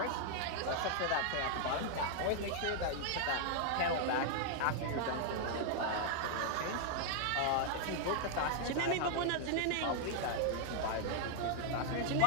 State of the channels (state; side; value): different; both; correlation 0.00